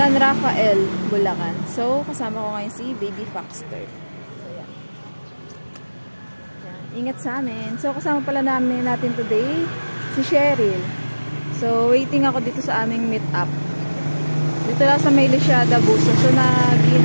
Rafael, Bulacan. So, kasama ko ngayon si Baby Foxter. So, yan. Ingat sa amin. So, kasama pala natin today si Cheryl. So, waiting ako dito sa aming meet up. Dito lang sa may Lisiada, Buso. So,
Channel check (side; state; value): both; inverted; correlation -1.00